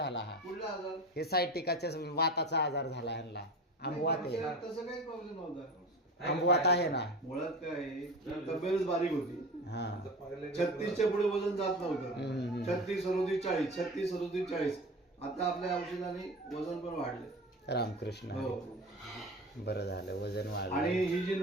हा कुठला आजार? हे सायटिकाच्या वाताचा आजार झाला ह्यांना. आंबवात आहे. तसं काही प्रॉब्लेम नव्हता. आंबवात आहे ना. मुळात काय आहे, तब्येतच बारीक होती. हा 36च्या पुढे वजन जात नव्हतं. हम्म. 36, 37, 40, 36, 37, 40. आता आपल्या औषधाने वजन पण वाढले. रामकृष्ण हो. हरी. बरं झालं वजन आणि वाढलं. ही जी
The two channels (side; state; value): both; normal; correlation 0.31